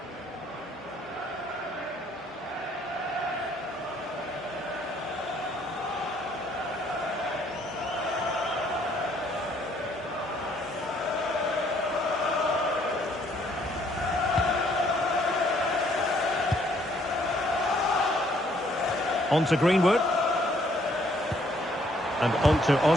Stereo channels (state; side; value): normal; both; correlation 0.65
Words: On to Greenwood. And on to